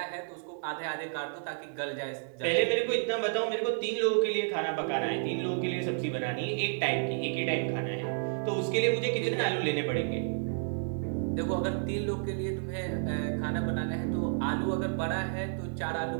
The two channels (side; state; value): left; silent; 57 dB below the other